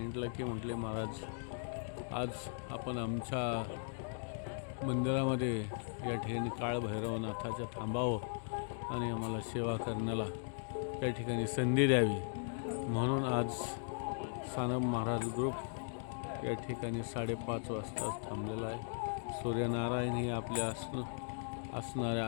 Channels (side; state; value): right; silent; digital silence